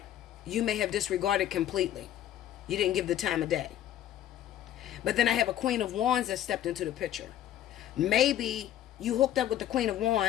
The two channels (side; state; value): right; quieter; 11.8 dB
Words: you may have disregarded completely. You didn't give the time of day. But then I have a Queen of Wands that stepped into the picture. Maybe you hooked up with the Queen of